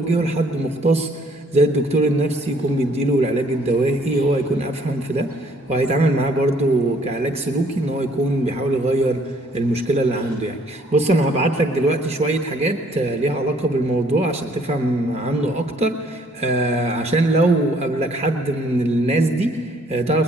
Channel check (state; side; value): normal; both; correlation 0.62